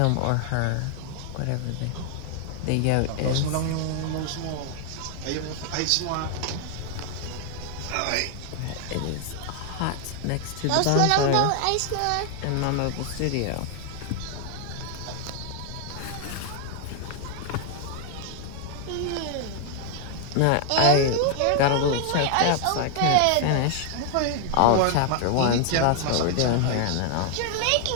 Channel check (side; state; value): both; different; correlation 0.00